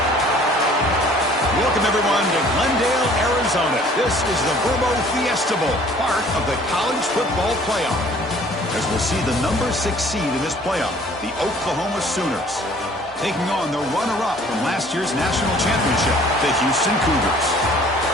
Welcome, everyone, to Glendale, Arizona. This is the Verbo Fiesta Bowl, part of the college football playoff, as we'll see the number 6 seed in this playoff, the Oklahoma Sooners, taking on the runner-up from last year's national championship, the Houston Cougars.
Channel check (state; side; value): normal; both; correlation 0.54